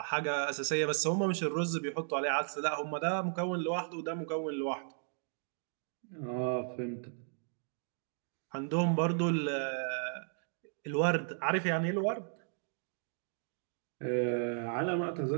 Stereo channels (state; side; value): silent; left; digital silence